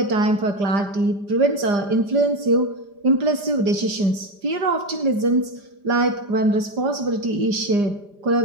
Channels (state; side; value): late; left; 5.0 ms